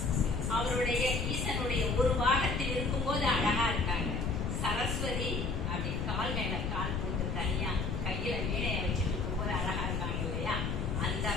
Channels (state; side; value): noise; left; rumble, 1 dB below the sound